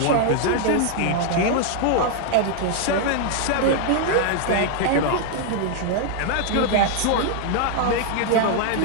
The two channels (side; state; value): both; different; correlation 0.00